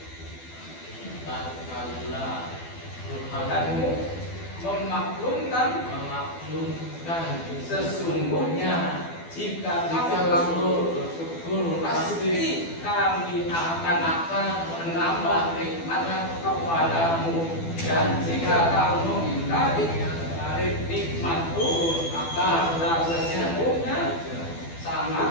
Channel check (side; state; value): right; late; 12 ms